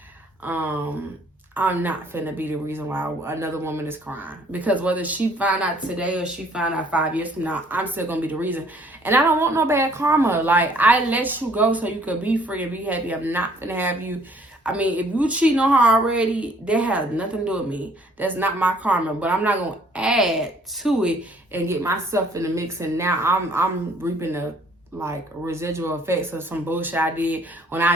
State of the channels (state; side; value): normal; both; correlation 0.60